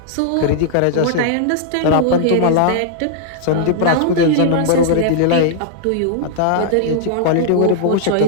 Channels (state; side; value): different; both; correlation -0.01